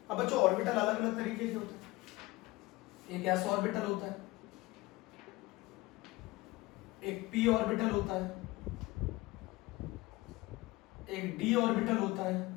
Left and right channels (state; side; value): quieter; right; 20.6 dB